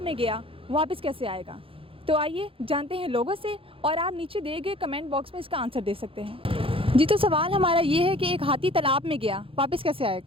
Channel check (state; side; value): late; left; 0.27 ms